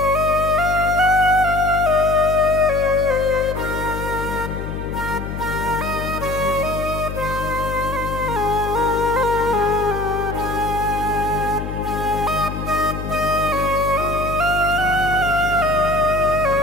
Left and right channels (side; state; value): left; noise; hum, 7 dB below the sound